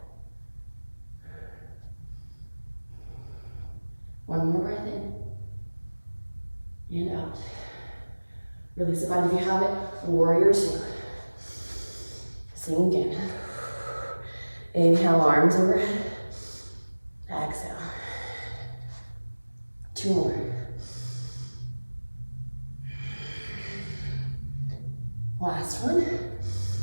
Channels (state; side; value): inverted; both; correlation -1.00